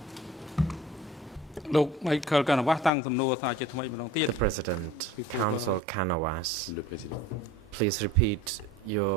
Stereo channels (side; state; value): both; normal; correlation 0.43